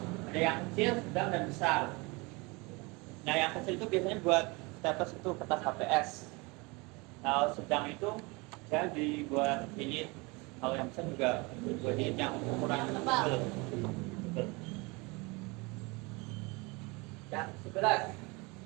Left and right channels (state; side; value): quieter; left; 26.5 dB